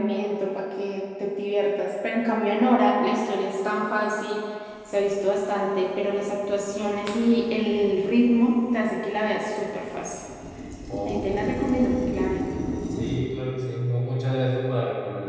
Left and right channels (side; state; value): both; identical; correlation 1.00